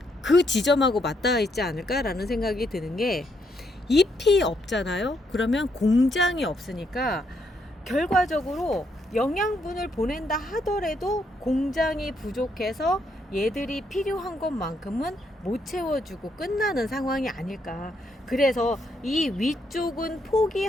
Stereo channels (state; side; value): normal; both; correlation 0.75